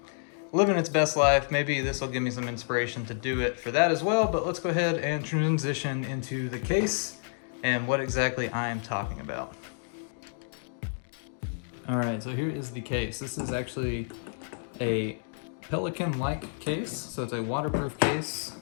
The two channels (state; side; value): silent; right; digital silence